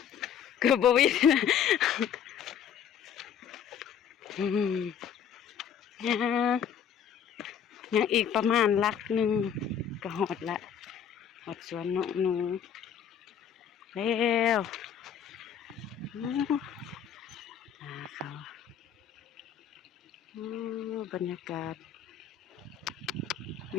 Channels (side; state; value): right; quieter; 8.2 dB